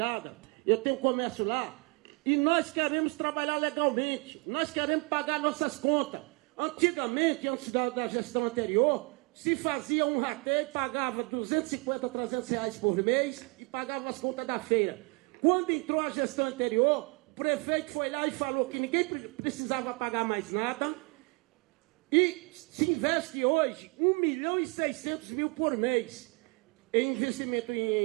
eu tenho comércio lá, e nós queremos trabalhar legalmente, nós queremos pagar nossas contas. Antigamente, antes da gestão anterior, se fazia um rateio, pagava 250, 300 reais por mês e pagava as contas da feira. Quando entrou a gestão anterior, o prefeito foi lá e falou que ninguém precisava pagar mais nada e se investe hoje 1.600.000 por mês em investimento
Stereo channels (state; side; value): quieter; left; 30.0 dB